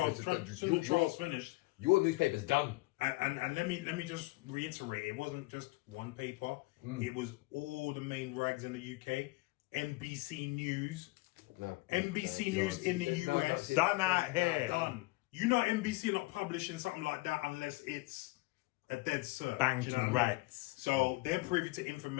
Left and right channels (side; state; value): right; quieter; 22.6 dB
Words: Since the trial's finished, your newspaper's done. And let me just reiterate, it wasn't just one paper. It was all the main rags in the UK, NBC News, NBC News in the US. Done out here. Done. You know NBC not publishing something like that unless it's a dead cert. Banking you know what I mean? rights. So they're privy to